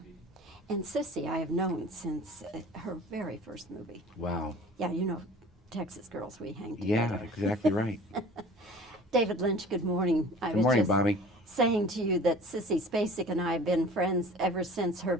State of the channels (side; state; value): both; normal; correlation 0.44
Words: And Sissy, I have known since her very first movie. Wow. Yeah, you know, Texas girls, we hang Yeah, together. exactly right. David Lynch, good morning. I Good was morning, just Bobbie. saying to you that Sissy Spacek and I have been friends ever since her